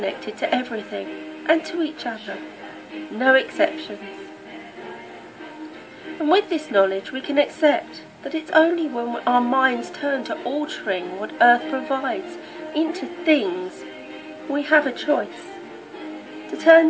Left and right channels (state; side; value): identical; both; correlation 1.00